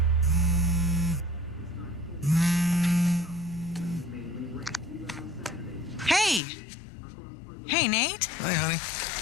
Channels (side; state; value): right; drops out; at 6.4 s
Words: Hey, Nate. Hi, honey.